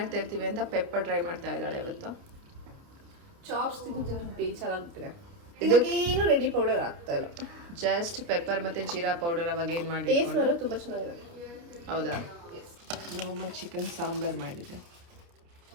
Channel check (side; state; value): left; late; 29 ms